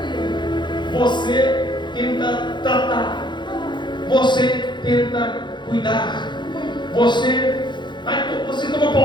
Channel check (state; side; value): late; right; 0.22 ms